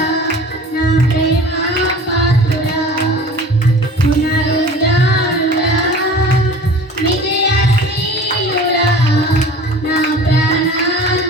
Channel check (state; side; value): normal; both; correlation 0.42